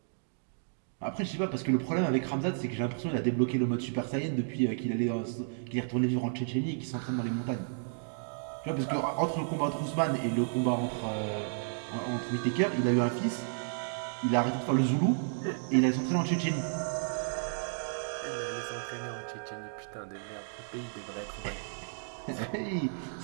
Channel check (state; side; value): silent; left; digital silence